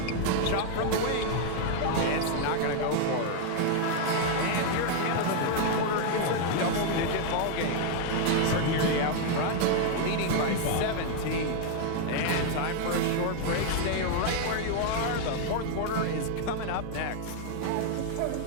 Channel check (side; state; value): both; different; correlation 0.00